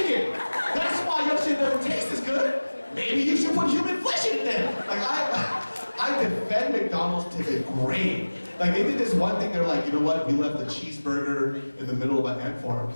That's why your shit doesn't taste as good. Maybe you should put human flesh in it then. Like, I defend McDonald's to the grave. Like, they did this one thing, they're like, you know what, we left the cheeseburger in the middle of an ant farm,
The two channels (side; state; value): both; inverted; correlation -1.00